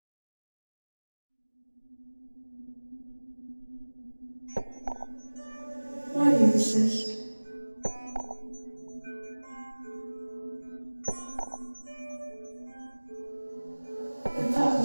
Why do you insist? The thought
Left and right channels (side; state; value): both; inverted; correlation -1.00